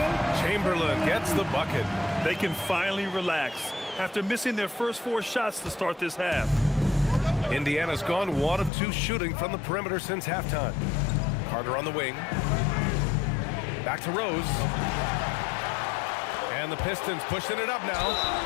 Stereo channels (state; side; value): drops out; right; at 8.7 s